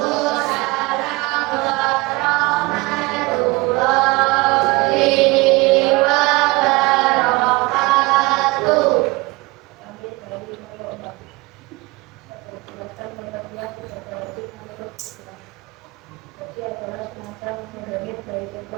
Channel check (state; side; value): quieter; left; 23.7 dB